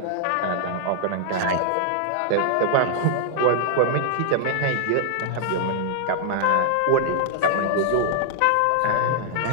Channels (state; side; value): different; both; correlation -0.01